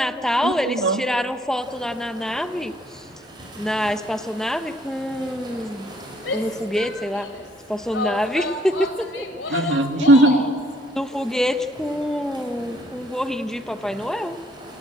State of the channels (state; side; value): normal; both; correlation 0.64